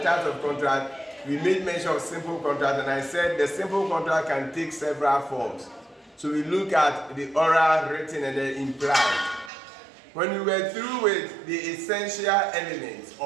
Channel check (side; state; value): left; drops out; at 9.5 s